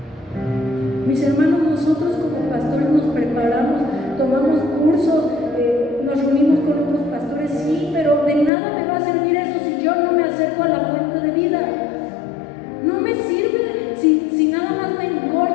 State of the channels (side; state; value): right; drops out; at 8.5 s